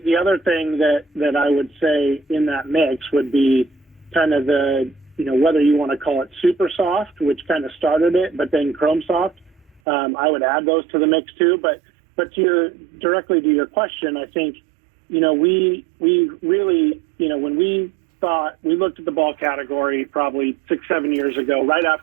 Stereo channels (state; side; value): drops out; left; at 9.8 s